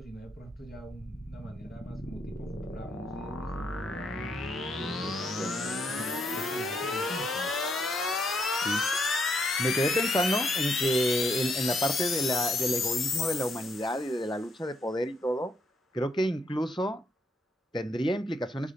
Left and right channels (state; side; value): normal; both; correlation 0.75